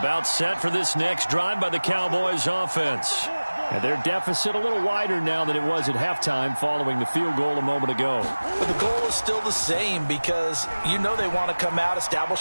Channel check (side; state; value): both; inverted; correlation -1.00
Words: set for this next drive by the Cowboys offense. And their deficit a little wider now than it was at halftime following the field goal a moment ago. But the goal is still the same because you know they want to come out,